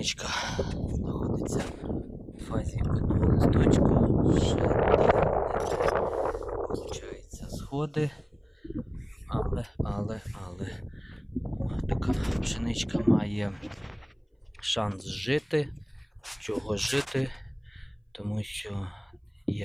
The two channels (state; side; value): identical; both; correlation 1.00